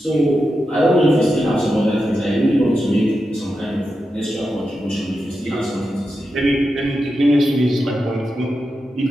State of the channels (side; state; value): both; normal; correlation 0.89